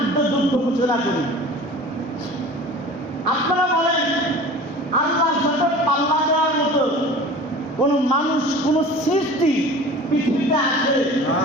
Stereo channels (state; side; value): normal; both; correlation 0.40